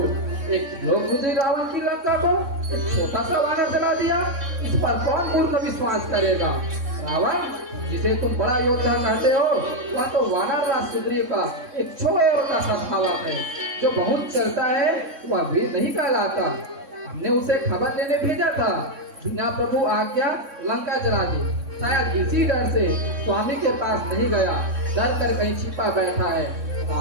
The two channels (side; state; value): left; late; 3.6 ms